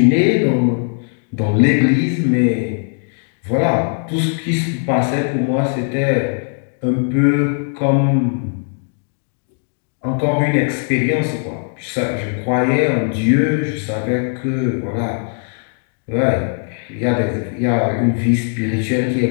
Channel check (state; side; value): silent; right; 58 dB below the other